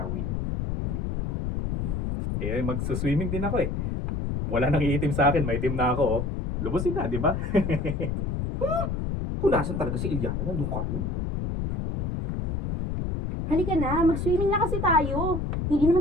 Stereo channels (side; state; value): left; noise; rumble, 1 dB below the sound